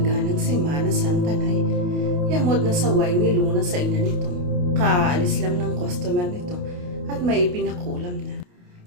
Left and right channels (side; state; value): left; late; 28 ms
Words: ng Semana Santa, Nay. Yamot na saway ni Luna sa ina nito. Kaalis lang ng customer nito at may pinakulam na.